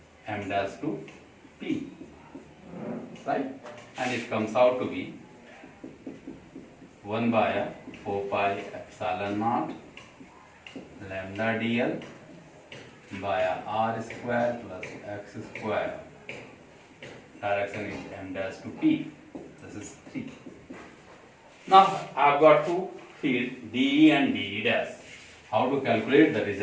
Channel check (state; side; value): identical; both; correlation 1.00